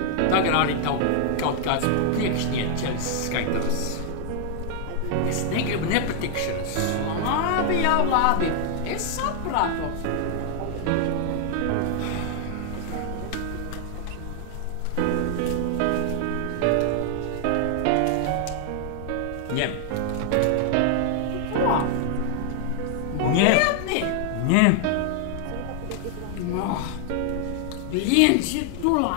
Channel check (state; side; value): different; both; correlation 0.00